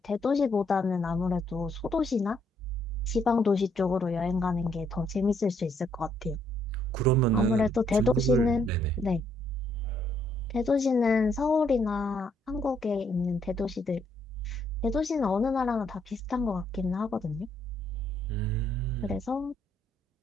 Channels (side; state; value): both; normal; correlation 0.71